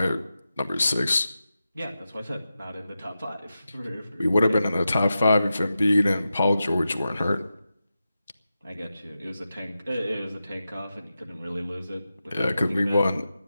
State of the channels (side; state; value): both; inverted; correlation -0.91